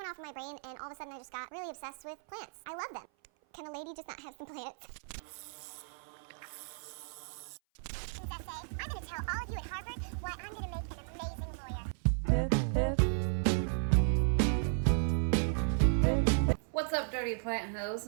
off in my brain, and all of a sudden I just got really obsessed with plants. I love them. Can a lady just not have some plants? I'm going to tell all of you at Harvard why I'm going to make an amazing lawyer. What's up, dirty plant hoes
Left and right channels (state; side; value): silent; left; 55 dB below the other